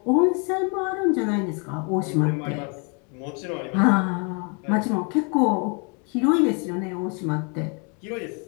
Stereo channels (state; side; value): quieter; right; 36.0 dB